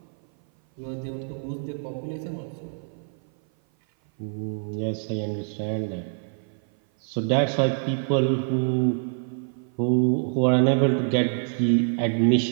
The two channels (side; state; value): left; silent; 57 dB below the other